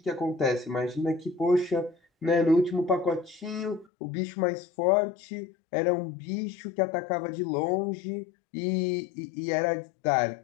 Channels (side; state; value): right; drops out; at 3.9 s